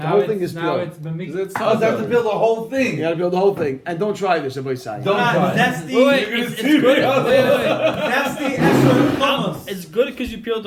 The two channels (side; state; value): both; identical; correlation 1.00